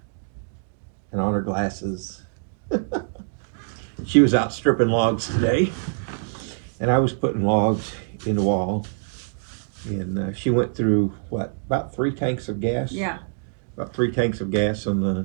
and on her glasses. She was out stripping logs today, and I was putting logs in the wall. And she went through, what, about 3 tanks of gas? Yeah. About 3 tanks of gas in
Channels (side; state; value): left; silent; digital silence